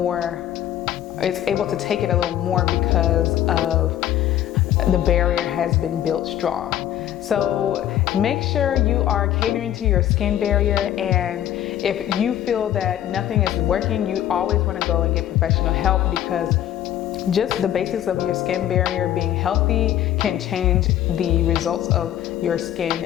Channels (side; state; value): right; quieter; 11.8 dB